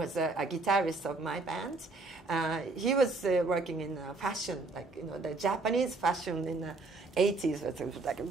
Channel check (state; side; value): quieter; left; 3.5 dB